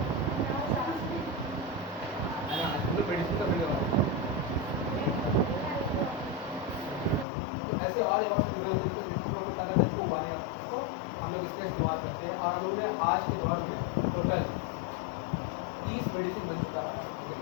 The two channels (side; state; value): right; drops out; at 7.2 s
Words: मेडिसिन का बिल ऐसे और हम लोग इसका इस्तेमाल करते हैं, और हम लोगों ने आज के दौर में टोटल 30 मेडिसिन बन चुका है,